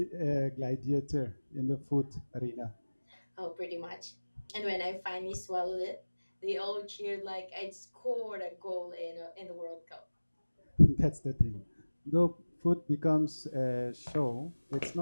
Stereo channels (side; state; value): both; inverted; correlation -1.00